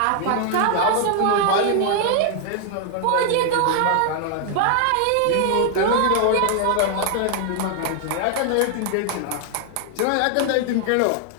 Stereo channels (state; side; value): different; both; correlation 0.00